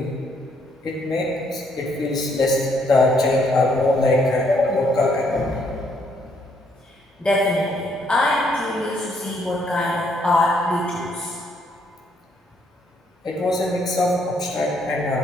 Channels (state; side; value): normal; both; correlation 0.71